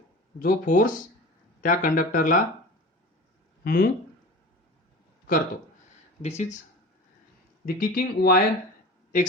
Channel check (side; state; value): both; normal; correlation 0.35